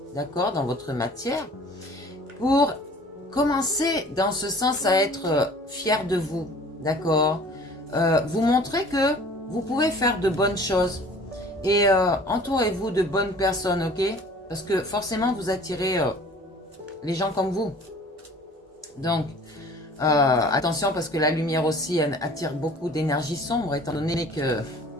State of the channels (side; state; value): both; normal; correlation 0.48